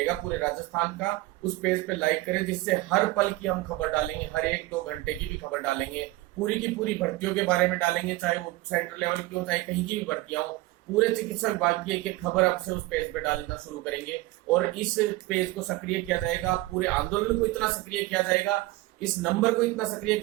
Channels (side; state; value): left; quieter; 19.1 dB